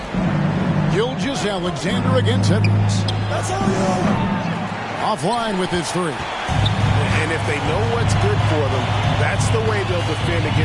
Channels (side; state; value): both; identical; correlation 1.00